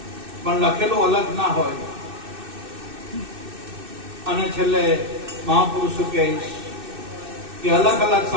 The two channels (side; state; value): left; late; 2.6 ms